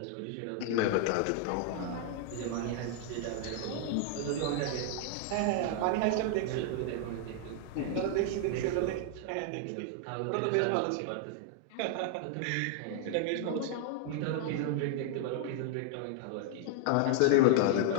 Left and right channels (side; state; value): both; different; correlation 0.00